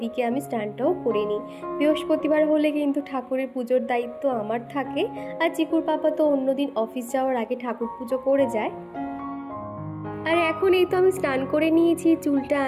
আমি স্নানটাও করে নিই। বৃহস্পতিবার হলে কিন্তু ঠাকুরের পুজোর দায়িত্ব আমার থাকে, আর চিকুর পাপা তো অন্যদিন অফিস যাওয়ার আগে ঠাকুর পুজো করে যায়। আর এখন এই তো আমি স্নান করে নিয়েছি, চুলটা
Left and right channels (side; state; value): both; identical; correlation 1.00